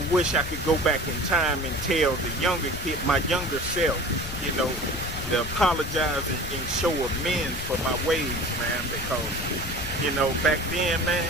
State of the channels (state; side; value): noise; left; rumble, 9 dB below the sound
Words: wish I could go back in time and tell the younger kid, my younger self, you know, to apologize and show amends for my ways, man, because, you know, back then,